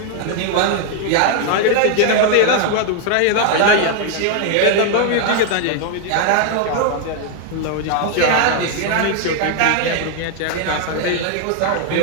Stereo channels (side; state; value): both; different; correlation 0.00